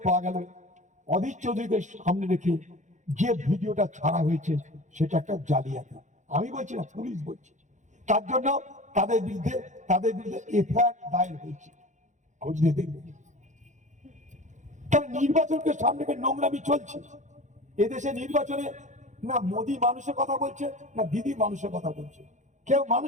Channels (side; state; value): left; late; 0.35 ms